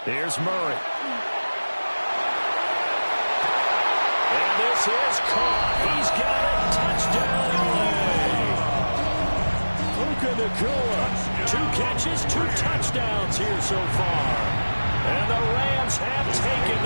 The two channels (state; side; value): inverted; both; correlation -1.00